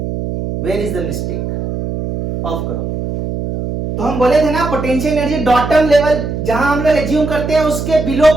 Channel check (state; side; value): noise; right; hum, 5 dB below the sound